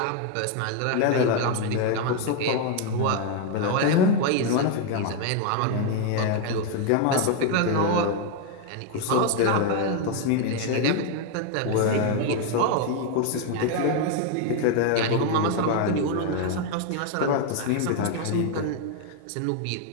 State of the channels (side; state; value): both; different; correlation 0.01